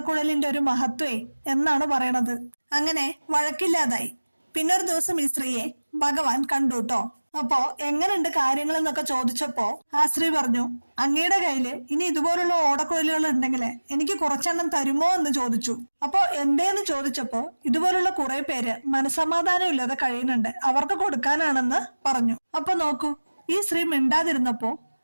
ഒരു മഹത്വേ എന്നാണ് പറയണത്. അങ്ങനെ വഴക്കില്ലാതായി. പിന്നൊരു ദിവസം ഈ സ്ത്രീയെ ഭഗവാൻ കണ്ടുട്ടോ. അപ്പോ എങ്ങനെയുണ്ട് കാര്യങ്ങൾ എന്നൊക്കെ ചോദിച്ചപ്പോ ആ സ്ത്രീ പറഞ്ഞു, അങ്ങയുടെ കയ്യില് ഇനി ഇതുപോലുള്ള ഓടക്കുഴലുകൾ ഉണ്ടെങ്കിൽ എനിക്ക് കുറച്ചെണ്ണം തരുമോ എന്ന് ചോദിച്ചു. അപ്പോ എന്തേന്ന് ചോദിച്ചപ്പോ ഇതുപോലുള്ള കുറെ പേര് മനസമാധാനം ഇല്ലാതെ കഴിയുന്നുണ്ട്, അവർക്ക് കൊടുക്കാനാണെന്ന് പറഞ്ഞു. അപ്പൊ നോക്കൂ, ഈ സ്ത്രീ മിണ്ടാതിരുന്നപ്പോ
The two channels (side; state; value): both; inverted; correlation -1.00